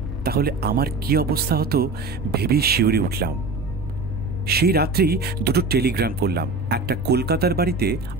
তাহলে আমার কি অবস্থা হতো ভেবেই শিউরে উঠলাম। সেই রাত্রেই 2টো টেলিগ্রাম করলাম, একটা কলকাতার বাড়িতে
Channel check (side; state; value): left; quieter; 3.5 dB